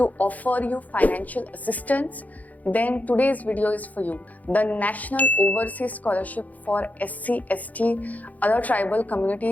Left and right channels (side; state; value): right; late; 0.077 ms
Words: offer you financial assistance, then today's video is for you. The National Overseas Scholarship for SC, ST, other tribal